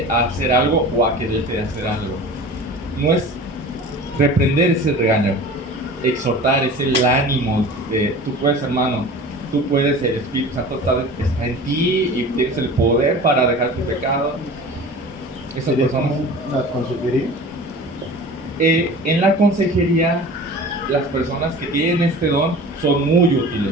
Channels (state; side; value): normal; both; correlation 0.39